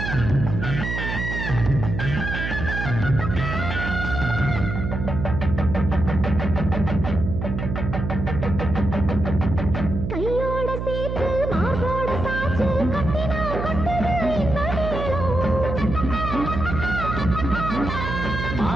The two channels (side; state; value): right; noise; hum, 4 dB below the sound